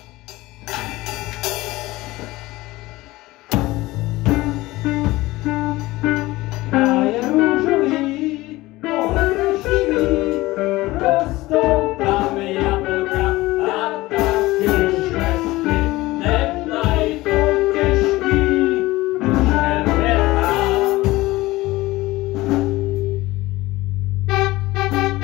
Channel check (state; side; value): quieter; right; 19.1 dB